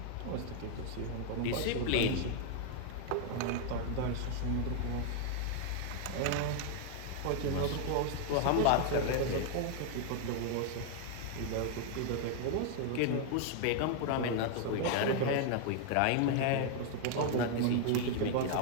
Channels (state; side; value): different; both; correlation 0.00